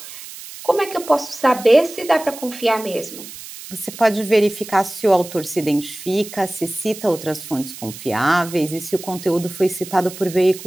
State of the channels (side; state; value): right; noise; hiss, 14 dB below the sound